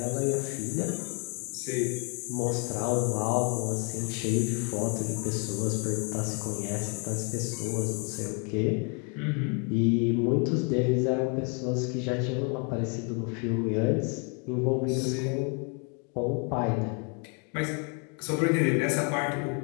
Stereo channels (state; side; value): quieter; right; 36.6 dB